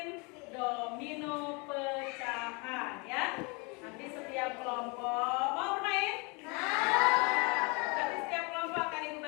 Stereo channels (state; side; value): quieter; right; 30.2 dB